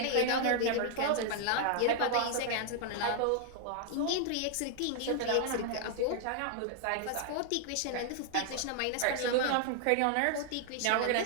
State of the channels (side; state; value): both; different; correlation 0.00